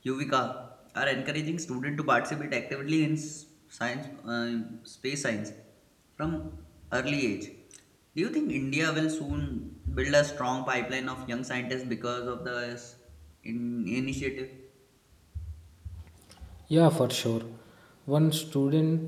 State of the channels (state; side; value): identical; both; correlation 1.00